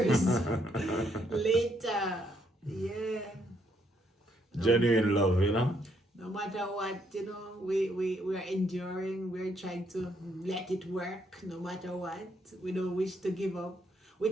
later. Yeah. Genuine love, you know? No matter what, you know, we're enduring. We're trying to let it work no matter what. We don't wish to give up. We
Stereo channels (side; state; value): both; normal; correlation 0.73